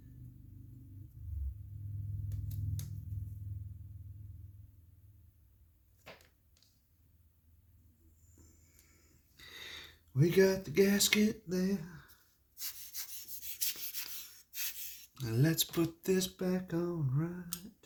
We got the gasket there. Now let's put this back on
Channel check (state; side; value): identical; both; correlation 1.00